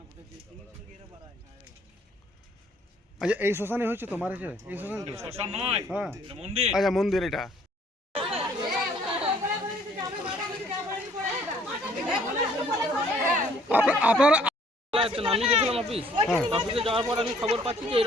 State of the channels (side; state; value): both; normal; correlation 0.61